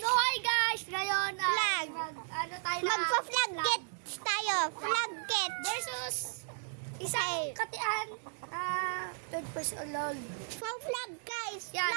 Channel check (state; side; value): silent; left; digital silence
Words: hi guys! Ngayon, Flag. ano tayo na? magpa-flag get tayo. Flag get. Versus isang katian, third person alone. For flag guys. Yan,